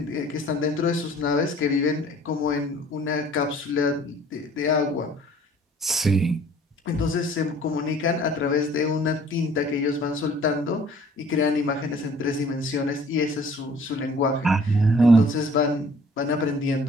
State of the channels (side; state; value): both; normal; correlation 0.53